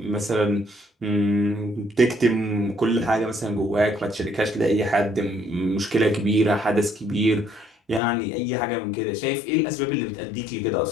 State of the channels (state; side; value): drops out; right; at 8.0 s